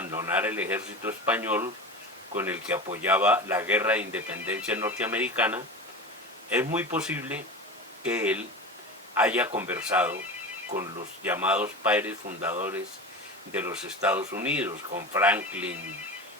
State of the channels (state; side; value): normal; both; correlation 0.29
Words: el ejército español con el que apoyaba la guerra de independencia norteamericana, es muy posible que él haya conversado con los llamados padres fundadores de los Estados Unidos, con Franklin,